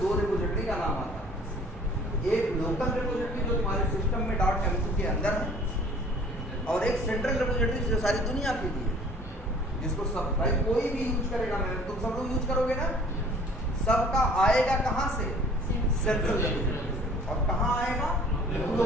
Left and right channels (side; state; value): both; normal; correlation 0.51